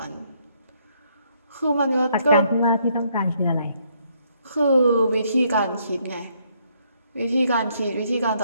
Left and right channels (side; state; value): both; inverted; correlation -0.71